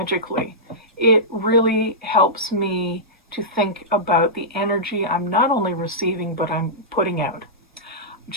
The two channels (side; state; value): both; normal; correlation -0.15